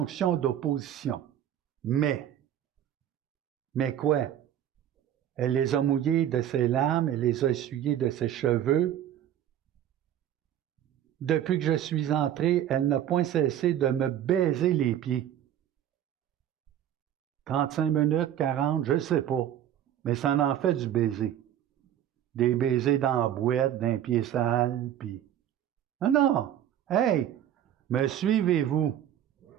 d'opposition. Mais quoi? Elle les a mouillés de ses larmes, elle les a essuyés de ses cheveux. Depuis que je suis entré, elle n'a point cessé de me baiser les pieds. 35 minutes, 40, je ne sais pas. Mais ça en fait du baiser. Des baisers dans la boîte, d'un pied sale, puis... Non, non! Hey! Me suivez-vous?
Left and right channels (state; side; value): quieter; left; 10.9 dB